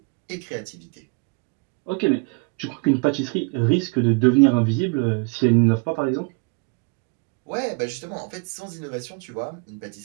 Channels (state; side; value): quieter; left; 32.0 dB